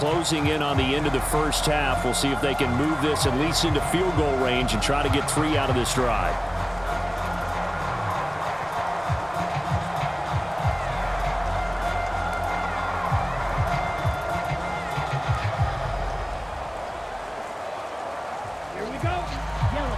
in on the end of the first half, we'll see if they can move this at least into field goal range and try to get 3 out of this drive. Here we go. Yellow,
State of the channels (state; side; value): identical; both; correlation 1.00